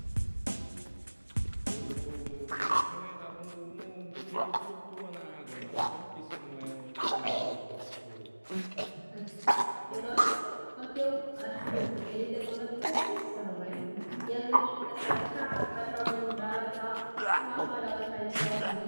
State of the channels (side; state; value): both; inverted; correlation -1.00